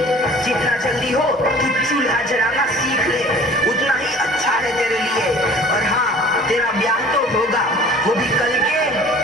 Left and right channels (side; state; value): both; normal; correlation 0.47